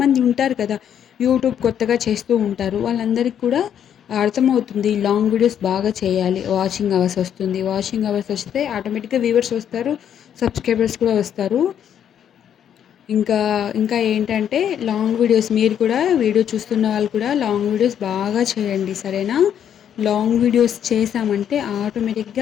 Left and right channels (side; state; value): right; quieter; 9.2 dB